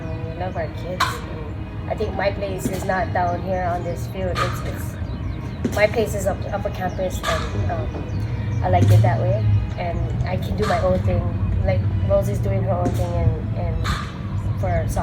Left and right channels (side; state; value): both; identical; correlation 1.00